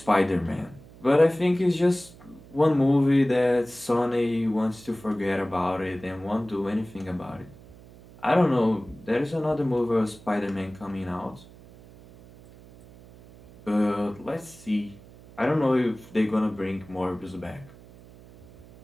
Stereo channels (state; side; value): noise; right; hum, 21 dB below the sound